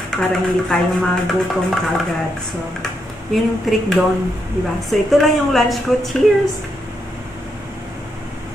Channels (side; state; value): both; normal; correlation 0.80